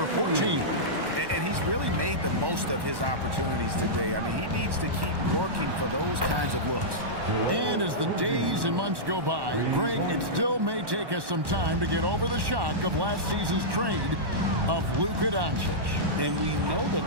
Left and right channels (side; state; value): left; late; 1.1 ms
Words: 14. And he's really made the most of his opportunities today. I mean, he needs to keep working for those kinds of looks. And as the days and months go by, Greg, it still may take us some time to get over the shock of last season's trade of Luka Doncic. And we know the